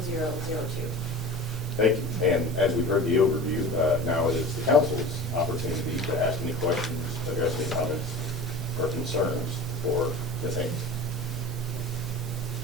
Thank you. And as we've heard the overview, now it is the council's opportunity to ask any questions, address any comments or concerns for Ms. Haynes.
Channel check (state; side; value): normal; both; correlation 0.35